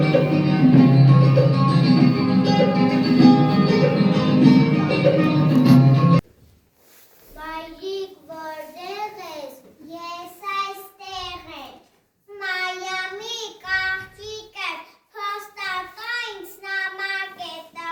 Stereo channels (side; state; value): both; identical; correlation 1.00